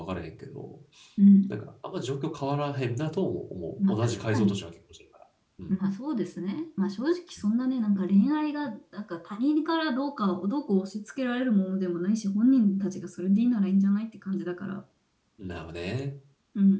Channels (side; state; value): both; identical; correlation 1.00